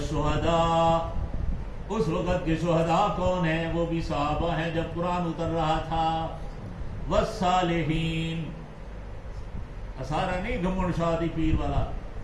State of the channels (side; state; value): both; identical; correlation 1.00